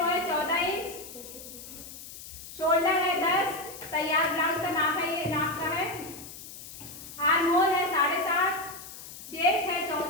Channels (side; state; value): left; noise; hiss, 14 dB below the sound